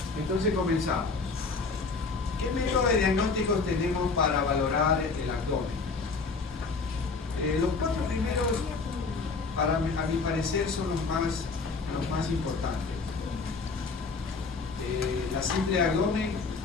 Entonces comenzamos. ¿Qué métodos de diagnósticos tenemos para valorar el abdomen? Los 4 primeros, a mi parecer, son los más importantes. La simple abdomen,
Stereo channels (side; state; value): right; quieter; 4.3 dB